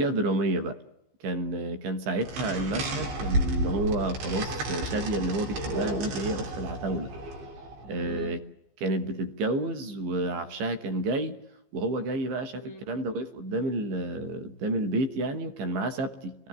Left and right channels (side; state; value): left; late; 15 ms